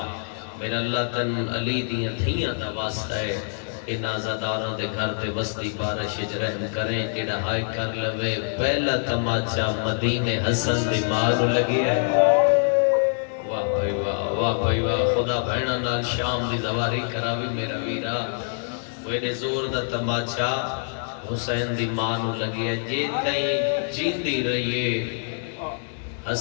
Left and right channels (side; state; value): right; silent; 61 dB below the other